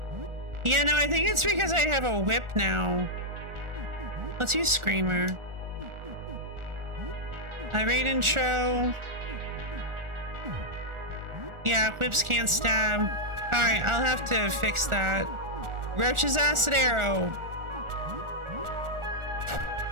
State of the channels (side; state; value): left; late; 1.4 ms